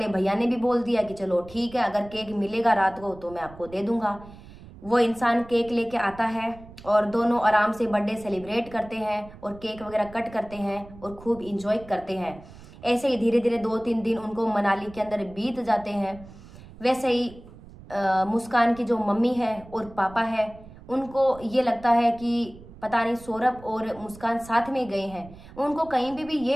भैया ने भी बोल दिया कि चलो ठीक है, अगर केक मिलेगा रात को तो मैं आपको दे दूंगा। वो इंसान केक लेके आता है और दोनों आराम से बर्थडे सेलिब्रेट करते हैं और केक वगैरह कट करते हैं और खूब इंजॉय करते हैं। ऐसे ही धीरे धीरे 2-3 दिन उनको मनाली के अंदर बीत जाते हैं। वैसे ही मुस्कान की जो मम्मी है और पापा है, उनको ये लगता है कि पता नहीं सौरभ और मुस्कान साथ में गए हैं। उनको कहीं भी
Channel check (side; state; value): right; noise; rumble, 19 dB below the sound